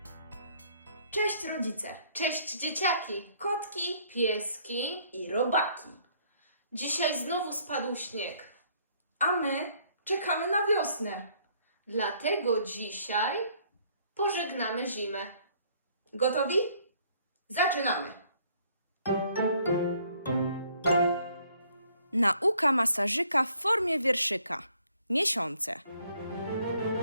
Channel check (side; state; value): both; inverted; correlation -0.63